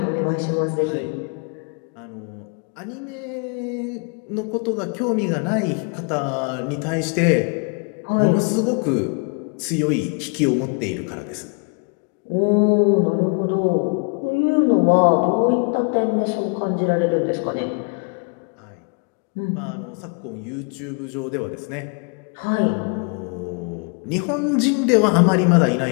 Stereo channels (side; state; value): right; quieter; 36.3 dB